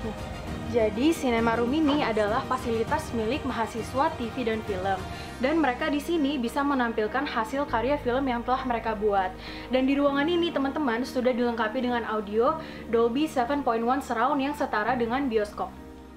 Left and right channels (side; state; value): both; identical; correlation 1.00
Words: Jadi Cinema Room ini adalah fasilitas milik mahasiswa TV dan film. Dan mereka di sini bisa menampilkan hasil karya film yang telah mereka buat. Dan di ruangan ini teman-teman sudah dilengkapi dengan audio Dolby 7.1 surround yang setara dengan bioskop.